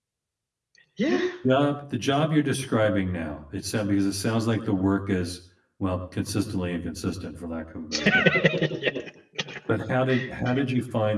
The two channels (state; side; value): identical; both; correlation 1.00